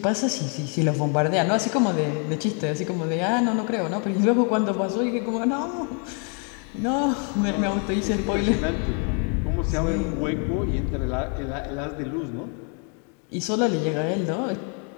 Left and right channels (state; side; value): quieter; right; 39.0 dB